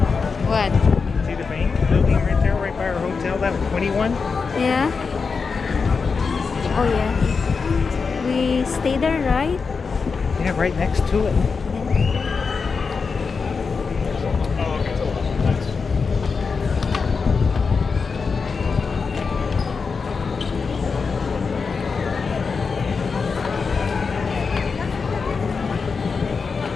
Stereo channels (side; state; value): right; quieter; 5.1 dB